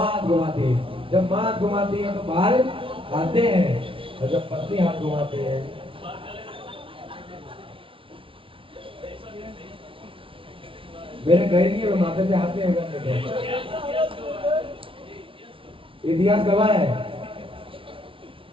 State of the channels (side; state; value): left; late; 0.25 ms